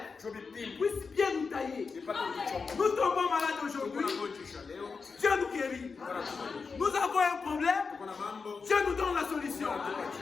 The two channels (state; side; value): quieter; right; 4.9 dB